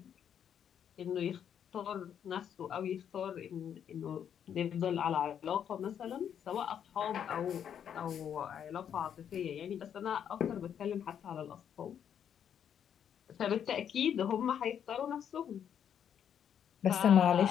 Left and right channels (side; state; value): right; quieter; 8.8 dB